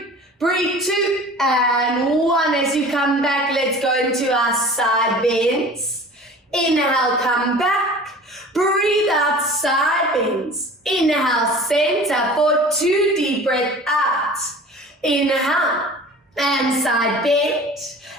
Breathe 2 and 1. As you come back, let's go into our side bends. Inhale, come back. Breathe out, side bends. Inhale, center for 2. Deep breath out. Inhale, and side bend.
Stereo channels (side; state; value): both; normal; correlation 0.42